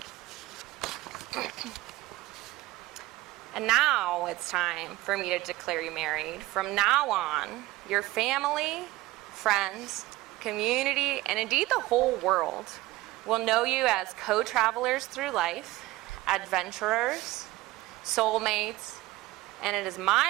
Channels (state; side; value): quieter; left; 18.4 dB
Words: And now it's time for me to declare you married. From now on, your family, friends, community, and indeed the whole world will know you as co-travelers through life, adventurers, soulmates, and it is